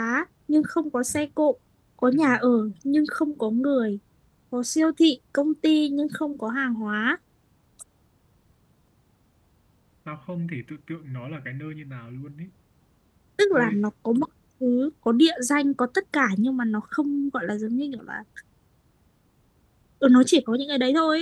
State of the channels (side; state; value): both; identical; correlation 1.00